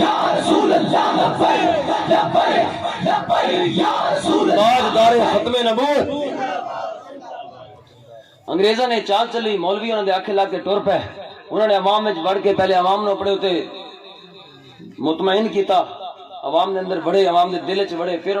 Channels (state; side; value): identical; both; correlation 1.00